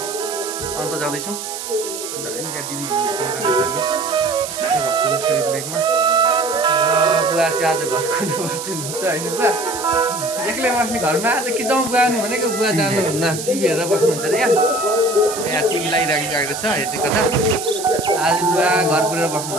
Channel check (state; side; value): noise; right; hiss, 8 dB below the sound